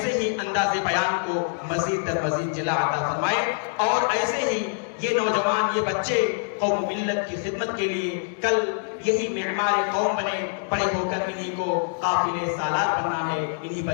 ہی انداز بیان کو مزید در مزید جلا عطا فرمائے، اور ایسے ہی یہ نوجوان، یہ بچے قوم ملت کی خدمت کے لیے کل یہی معمار قوم بنے، بڑے ہو کر انہی کو قافلے سالار بننا ہے، انہی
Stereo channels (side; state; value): right; silent; digital silence